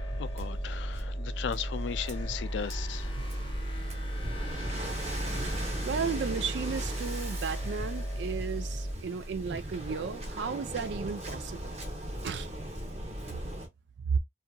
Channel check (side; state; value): both; normal; correlation 0.55